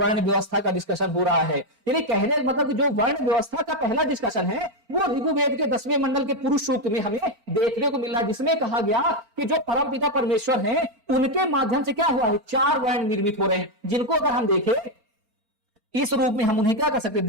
व्यवस्था का डिस्कशन हो रहा है। यानी कहने का मतलब जो वर्ण व्यवस्था का पहला डिस्कशन है वो ऋग्वेद के 10वें मंडल के पुरुष सूक्त में हमें देखने को मिल रहा है, जिसमें कहा गया कि जो परमपिता परमेश्वर हैं उनके माध्यम से क्या हुआ है, 4 वर्ण निर्मित हो रहे हैं, जिनको अगर हम देखें इस रूप में हम उन्हें क्या कर सकते,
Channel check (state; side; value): late; left; 4.3 ms